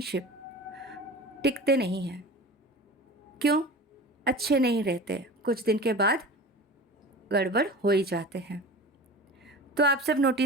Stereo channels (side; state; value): both; normal; correlation 0.35